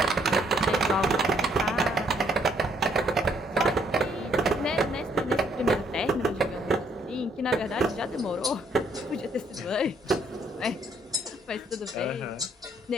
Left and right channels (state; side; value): normal; both; correlation 0.67